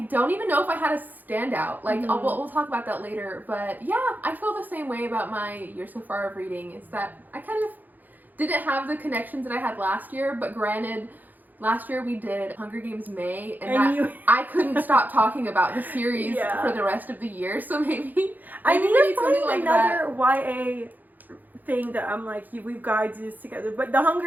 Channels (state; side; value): late; left; 0.084 ms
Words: don't even know if I had a standout. Like, we'll talk about that later. But yeah, I feel the same way about my year so far of reading. Is that I kind of didn't have the connections that I had last year, but granted, last year we did Hunger Games May, and I couldn't stop talking about the series for the rest of the year, so maybe I need to find like another YA thing that I'm like, we've got to do this together. But the